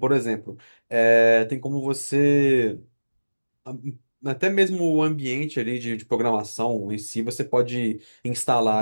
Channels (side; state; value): both; inverted; correlation -1.00